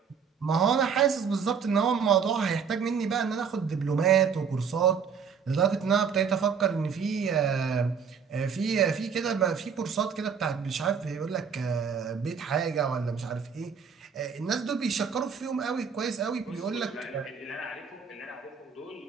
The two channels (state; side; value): quieter; left; 6.4 dB